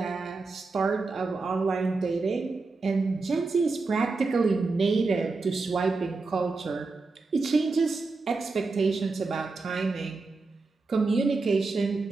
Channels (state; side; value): quieter; left; 3.9 dB